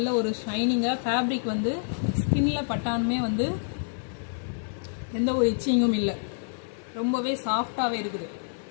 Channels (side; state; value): right; silent; digital silence